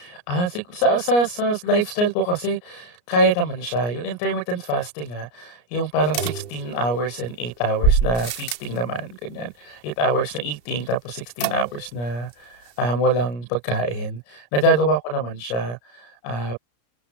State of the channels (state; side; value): late; right; 33 ms